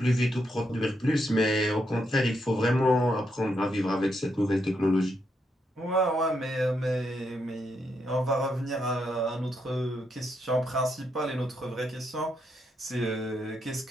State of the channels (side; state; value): both; normal; correlation 0.80